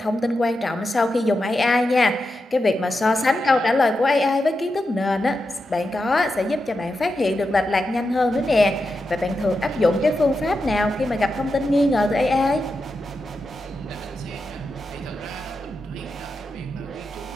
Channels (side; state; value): both; normal; correlation 0.88